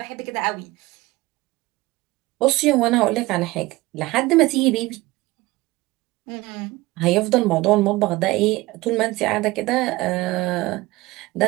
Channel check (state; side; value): quieter; left; 20.1 dB